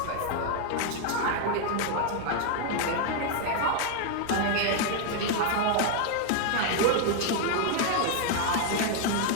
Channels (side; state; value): both; different; correlation 0.00